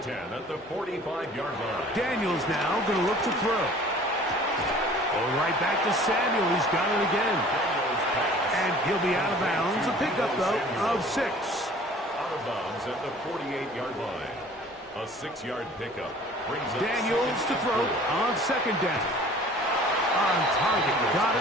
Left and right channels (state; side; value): normal; both; correlation 0.49